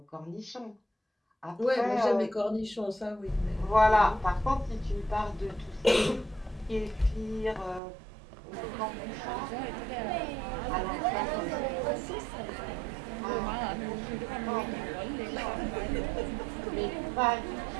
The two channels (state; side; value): drops out; left; at 7.8 s